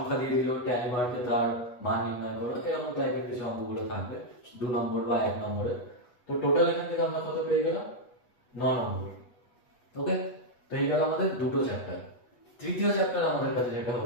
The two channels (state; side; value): late; right; 8.2 ms